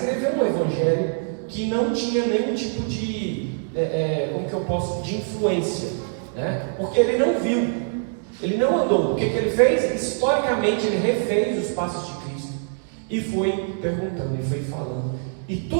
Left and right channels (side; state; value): left; silent; digital silence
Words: um evangelho que não tinha nenhum tipo de de influência, né? Porque ele não viu, ele não andou. O que ele fez? Historicamente ele refez os passos de Cristo e foi perguntando, e foi falando. E